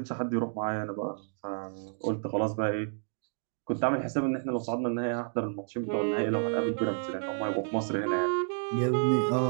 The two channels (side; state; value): left; silent; 58 dB below the other